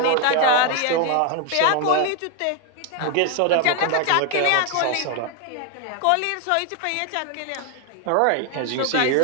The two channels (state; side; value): different; both; correlation 0.00